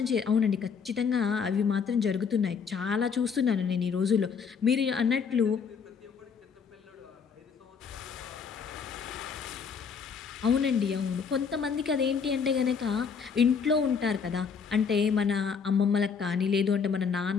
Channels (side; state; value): right; quieter; 6.2 dB